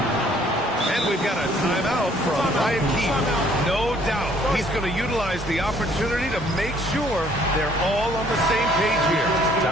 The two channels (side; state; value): both; normal; correlation 0.61